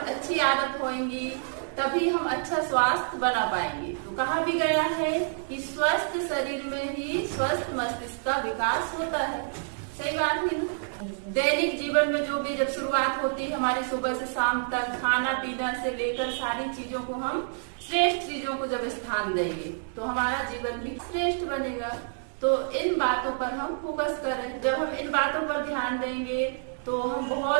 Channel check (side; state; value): left; silent; digital silence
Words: अच्छी आदत होगी तभी हम अच्छा स्वास्थ्य बना पाएंगे। तो कहा भी गया है कि स्वस्थ शरीर में ही स्वस्थ मस्तिष्क का विकास होता है। सही बात है ना? दैनिक जीवन में जो भी जब शुरुआत होती है हमारी सुबह से शाम तक, खाना पीना से लेकर सारी चीजों को हम श्रेष्ठ चीजों को जब स्थान देंगे तो हमारा जीवन भी श्रेष्ठ बनेगा। तो इन बातों पर हम फोकस करें। जब हम इन बातों पर ध्यान देंगे तो हम